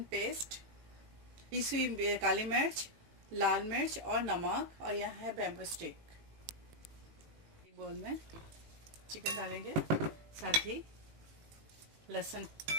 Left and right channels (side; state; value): left; late; 18 ms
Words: पेस्ट, पिसी हुई काली मिर्च, लाल मिर्च और नमक। और यहाँ है बैम्बू स्टिक। एक बोल में चिकन डालेंगे, साथ ही लहसुन,